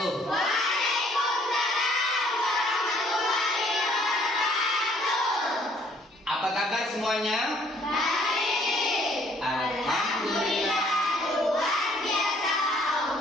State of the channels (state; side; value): normal; both; correlation 0.62